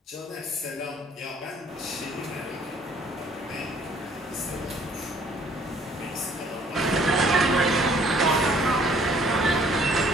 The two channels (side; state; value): both; normal; correlation 0.59